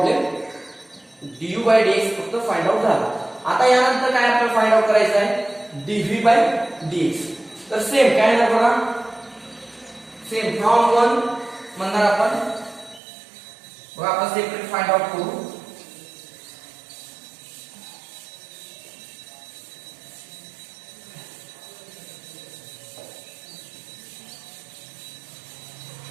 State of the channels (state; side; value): drops out; left; at 13.0 s